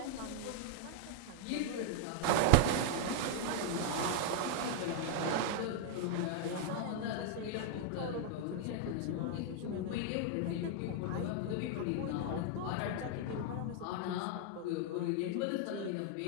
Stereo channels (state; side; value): different; both; correlation 0.00